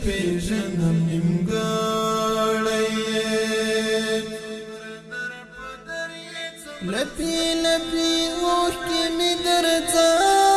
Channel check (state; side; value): identical; both; correlation 1.00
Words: پېژنم نیمګړی یې لپې لپې اوښکې مې در